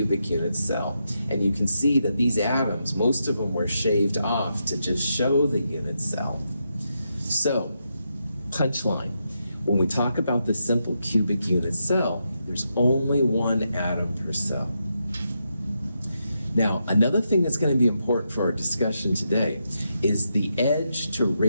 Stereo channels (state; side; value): inverted; both; correlation -0.83